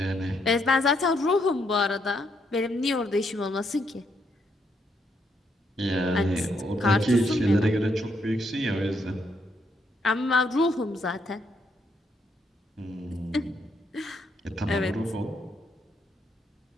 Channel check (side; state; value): both; normal; correlation 0.75